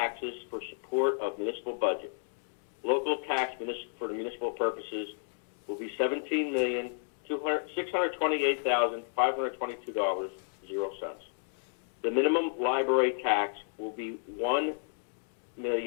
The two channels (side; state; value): right; silent; digital silence